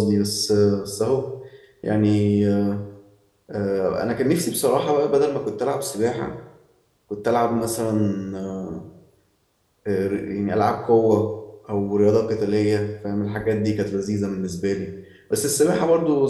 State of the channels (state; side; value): identical; both; correlation 1.00